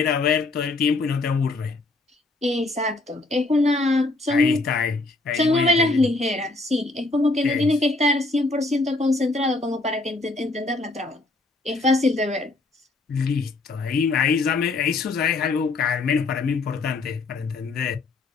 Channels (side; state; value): right; quieter; 3.3 dB